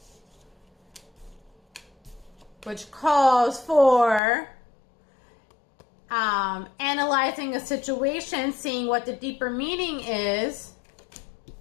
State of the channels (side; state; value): right; drops out; at 4.2 s